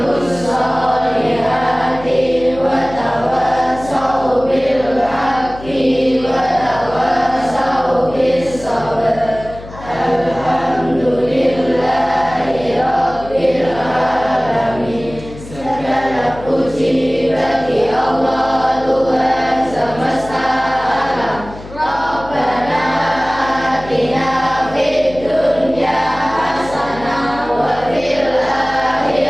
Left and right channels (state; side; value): noise; left; hum, 16 dB below the sound